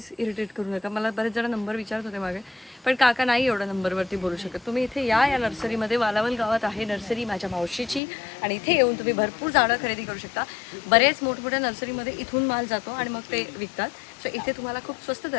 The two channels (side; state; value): right; drops out; at 8.0 s